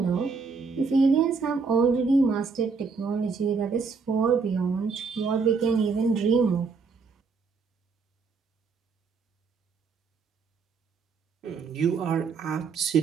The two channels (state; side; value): quieter; left; 5.0 dB